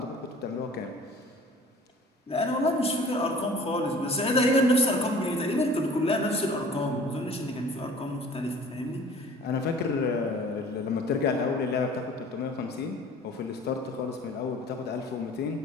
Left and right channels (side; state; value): both; normal; correlation 0.47